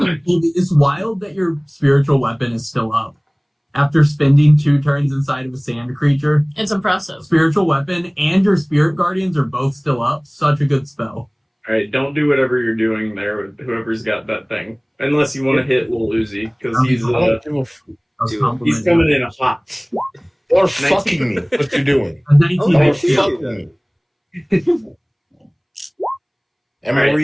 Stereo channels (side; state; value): both; identical; correlation 1.00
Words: wild that your spiritual weapon is still up. After spending 2 turns inside of a sand creature, It's impressive. spiritual weapon and your spirit guardians are both still up. Such a good spell. All right, don't do whatever you're doing there with whoever's got that thing, unless you want to hit Lil Uzi because he's I don't give a I was Dude, complimenting he's coming in hot. You're fucking me. What you doing? A 19 Oh, You're I hits see you. that. fucking me. And Right.